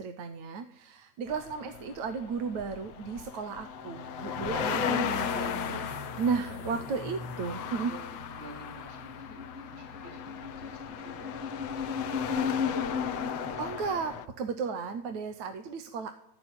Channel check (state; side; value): late; left; 8.1 ms